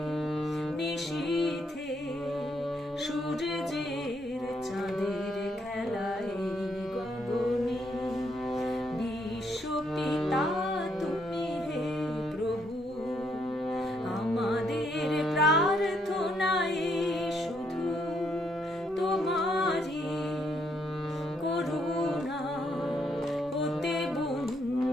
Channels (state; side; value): normal; both; correlation 0.73